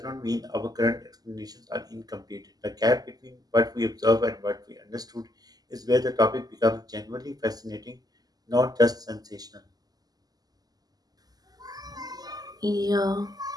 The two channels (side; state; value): left; late; 0.18 ms